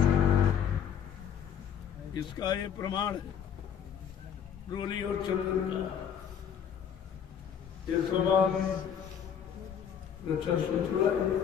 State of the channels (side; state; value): right; quieter; 8.2 dB